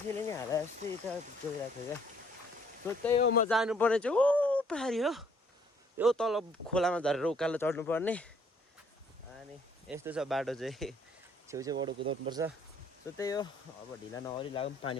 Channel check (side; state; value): both; normal; correlation 0.63